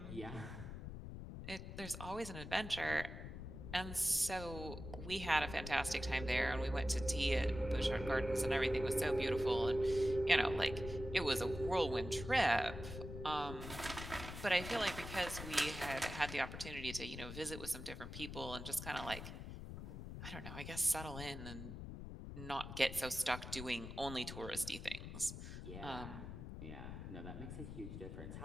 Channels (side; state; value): left; noise; rumble, 9 dB below the sound